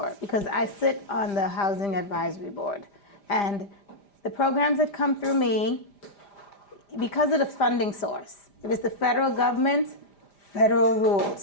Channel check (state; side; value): late; right; 5.0 ms